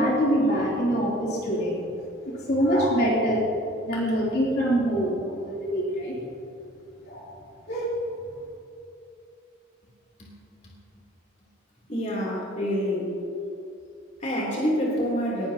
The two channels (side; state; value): both; normal; correlation 0.51